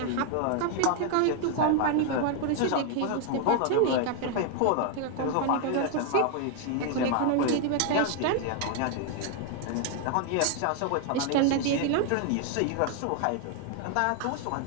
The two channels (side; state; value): both; different; correlation 0.00